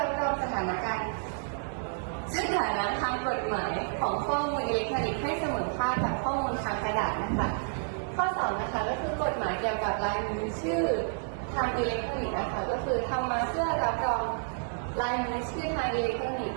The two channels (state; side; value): silent; left; 58 dB below the other